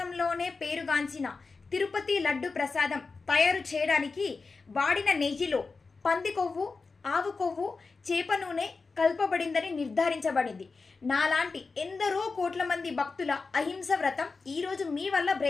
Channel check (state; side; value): quieter; right; 4.3 dB